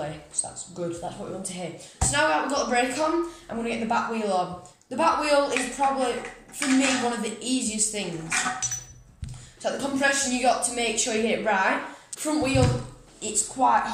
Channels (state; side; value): identical; both; correlation 1.00